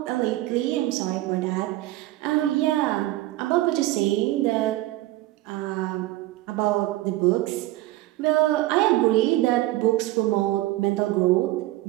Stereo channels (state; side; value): quieter; left; 17.1 dB